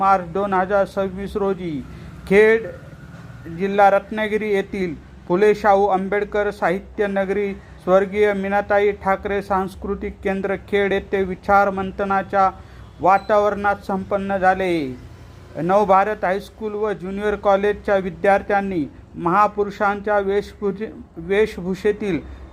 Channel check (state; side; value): identical; both; correlation 1.00